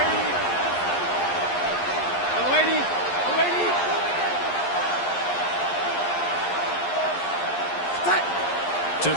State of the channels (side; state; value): right; late; 11 ms